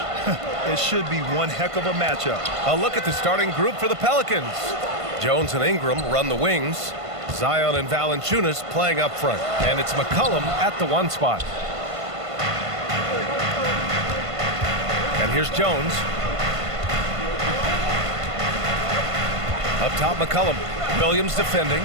It should be one heck of a matchup. A look at the starting group for the Pelicans. Jones and Ingram run the wings. Zion and Valanciunas playing up front. And it's McCollum at the 1 spot. And here's Jones. Up top, McCollum. Williams defending.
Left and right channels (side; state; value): left; late; 1.5 ms